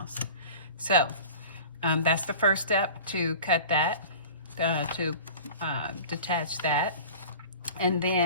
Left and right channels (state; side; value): inverted; both; correlation -0.39